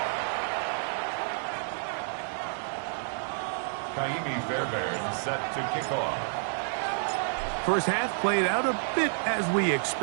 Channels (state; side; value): silent; left; digital silence